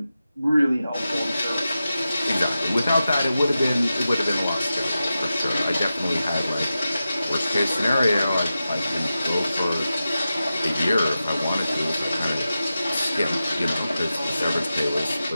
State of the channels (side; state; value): both; inverted; correlation -0.92